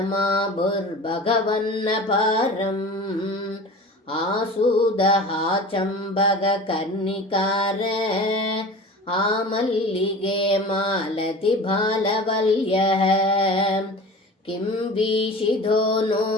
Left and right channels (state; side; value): normal; both; correlation 0.37